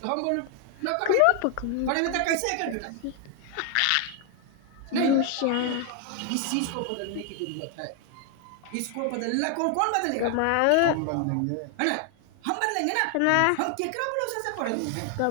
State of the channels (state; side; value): different; both; correlation 0.00